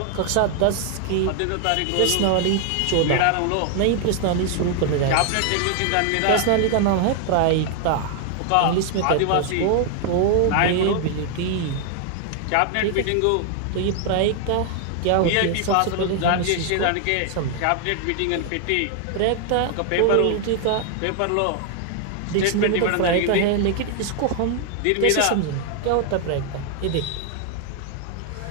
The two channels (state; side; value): different; both; correlation 0.00